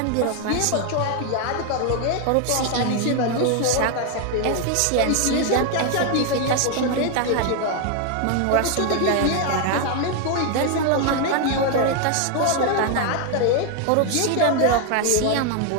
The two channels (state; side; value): different; both; correlation 0.00